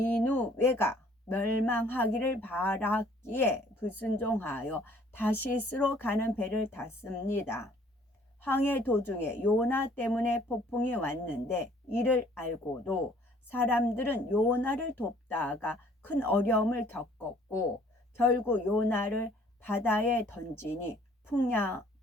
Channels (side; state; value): both; normal; correlation 0.58